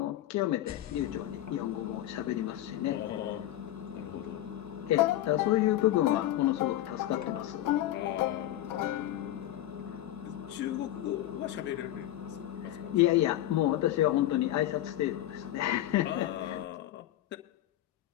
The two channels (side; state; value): right; quieter; 13.6 dB